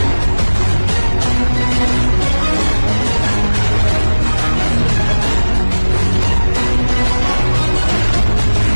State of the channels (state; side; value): inverted; both; correlation -1.00